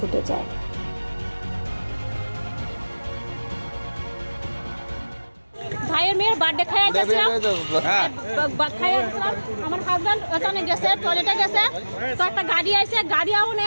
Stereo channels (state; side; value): inverted; both; correlation -1.00